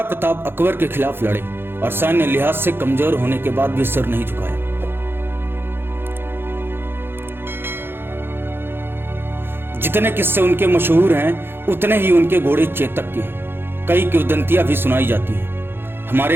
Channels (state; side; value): late; left; 0.10 ms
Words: प्रताप अकबर के खिलाफ लड़े और सैन्य लिहाज से कमजोर होने के बाद भी सिर नहीं झुकाया। जितने किस्से उनके मशहूर हैं उतने ही उनके घोड़े चेतक के हैं। कई किंवदंतियां भी सुनाई जाती हैं। हमारे